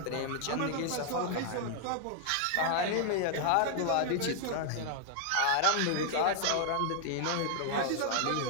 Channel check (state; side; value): different; both; correlation 0.00